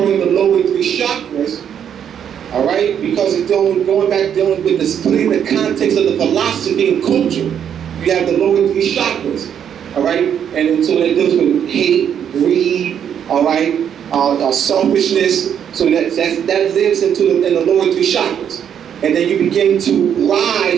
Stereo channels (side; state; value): left; quieter; 8.7 dB